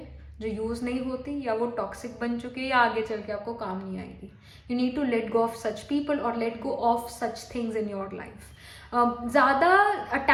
जो यूज़ नहीं होती, या वो टॉक्सिक बन चुकी है, या आगे चल के आपको काम नहीं आएगी. You need to let go of such people और let go of such things in your life. ज़्यादा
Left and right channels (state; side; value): identical; both; correlation 1.00